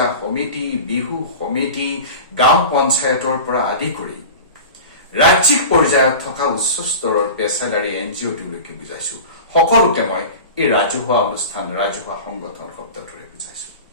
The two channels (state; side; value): inverted; both; correlation -0.33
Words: সমিতি, বিহু সমিতি, গাঁও পঞ্চায়তৰ পৰা আদি কৰি ৰাজ্যিক পৰ্যায়ত থকা উচ্চ স্তৰৰ পেছাদাৰী NGOটোলৈকে বুজাইছো। সকলোকে মই এই ৰাজহুৱা অনুষ্ঠান, ৰাজহুৱা সংগঠন শব্দটোৰে বুজাইছো।